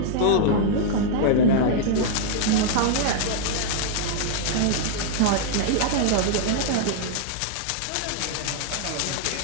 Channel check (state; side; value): different; both; correlation -0.01